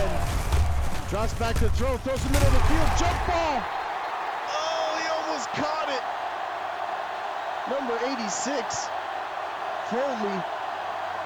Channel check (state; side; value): identical; both; correlation 1.00